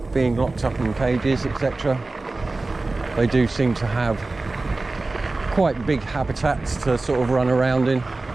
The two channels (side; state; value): left; quieter; 3.3 dB